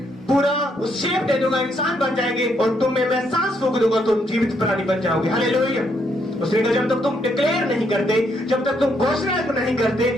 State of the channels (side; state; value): both; normal; correlation 0.74